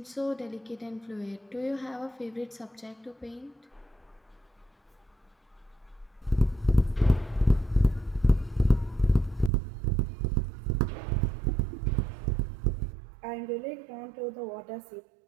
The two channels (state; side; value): drops out; left; at 9.5 s